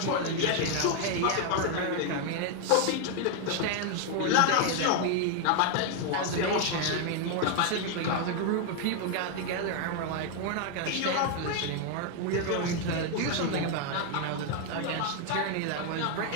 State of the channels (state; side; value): different; both; correlation 0.00